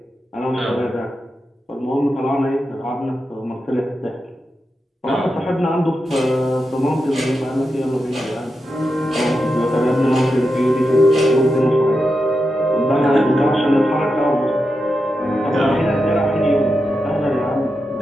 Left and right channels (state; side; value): normal; both; correlation 0.88